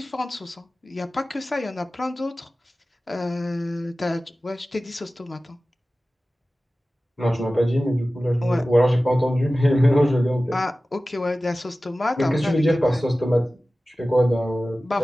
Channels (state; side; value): normal; both; correlation 0.96